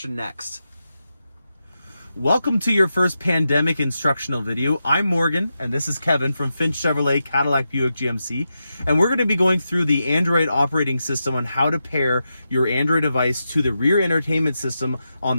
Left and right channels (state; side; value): inverted; both; correlation -0.88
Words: next. Welcome to your first pandemic instructional video. I'm Morgan, and this is Kevin from Finch Chevrolet Cadillac Buick GMC, and we're going to be going through the Android operating system on how to pair your Android device to the rear entertainment system on